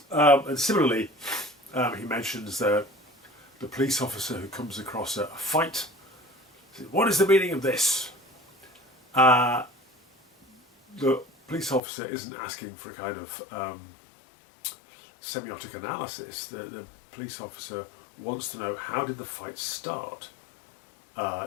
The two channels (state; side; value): drops out; right; at 11.8 s